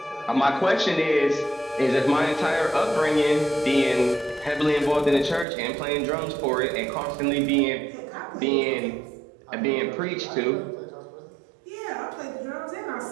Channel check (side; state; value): left; drops out; at 5.5 s